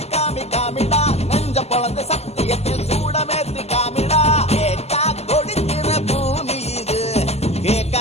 காமி காமிடா நெஞ்ச பொழந்த சத்தியத்தை சூடமேத்தி காமிடா கேட்டா கொடுக்கிற பூமி இது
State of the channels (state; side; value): late; right; 0.30 ms